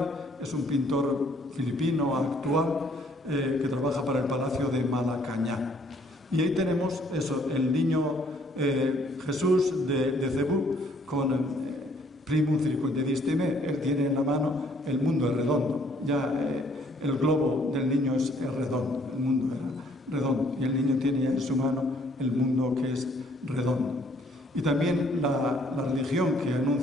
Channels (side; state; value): both; normal; correlation 0.63